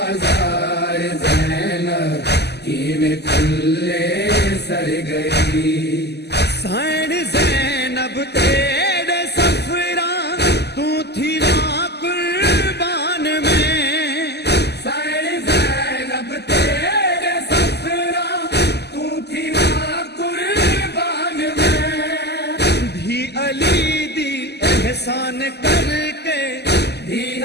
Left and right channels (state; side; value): late; right; 0.49 ms